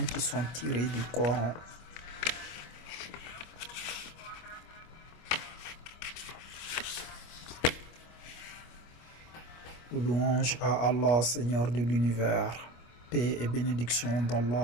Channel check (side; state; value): right; late; 25 ms